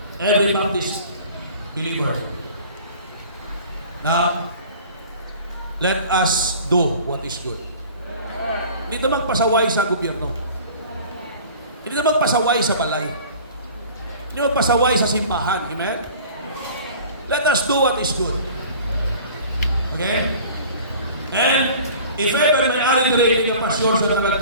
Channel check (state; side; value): inverted; both; correlation -0.44